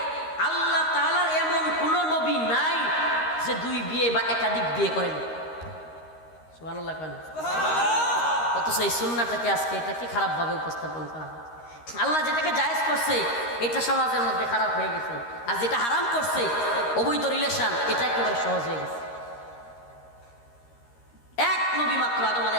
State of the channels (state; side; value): late; right; 13 ms